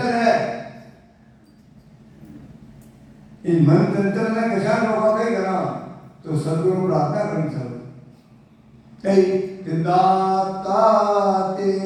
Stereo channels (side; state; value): both; identical; correlation 1.00